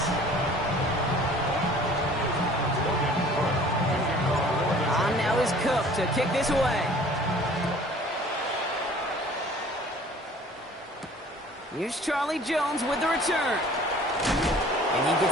On now is Cook to kick this away. Here's Charlie Jones with the return. And he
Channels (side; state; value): both; normal; correlation 0.50